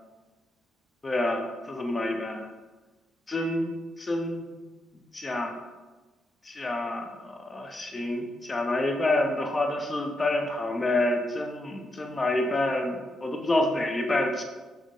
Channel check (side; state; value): both; normal; correlation 0.83